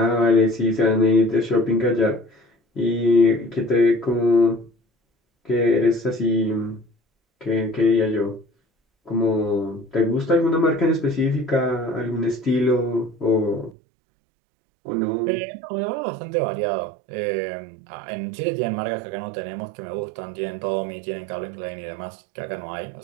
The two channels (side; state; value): left; drops out; at 13.8 s